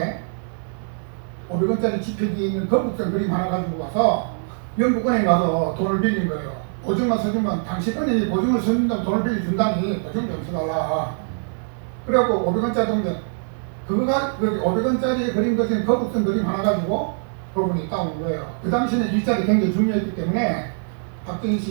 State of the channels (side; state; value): left; silent; digital silence